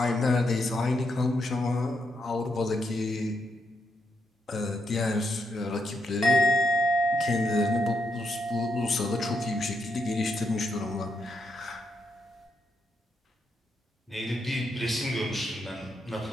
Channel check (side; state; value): both; normal; correlation 0.80